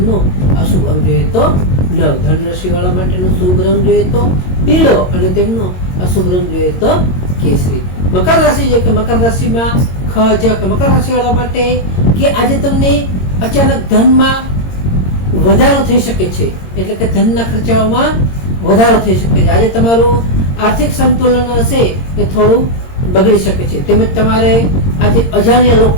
અશુભ અંગ જોઈએ તો 9. ધન રાશિ વાળા માટેનો શુભ રંગ જોઈએ તો પીળો અને તેમનો અશુભ રંગ જોઈએ તો કેસરી. મકર રાશિ છે કે મકર રાશિમાં મકર રાશિ વાળા માટે કે આજે તમને અચાનક ધનમાં વધારો થઈ શકે છે, એટલે કે ધનના ખર્ચાઓમાં વધારો થઈ શકે છે. આજે તમારું આર્થિક સંતુલન હશે એ થોડું બગડી શકે છે. તેમજ તમારે આજે અજાણ્યા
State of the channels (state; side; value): late; right; 22 ms